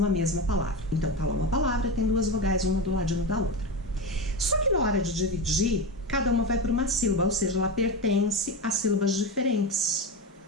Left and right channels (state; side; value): normal; both; correlation 0.19